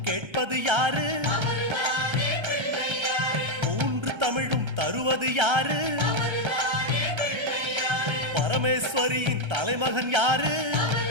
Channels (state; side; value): late; left; 1.3 ms